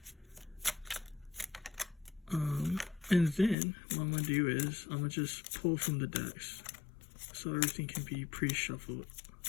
And then what I'm going to do is I'm going to just pull from the decks so everything can be pre-shuffled.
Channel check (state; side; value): drops out; right; at 3.6 s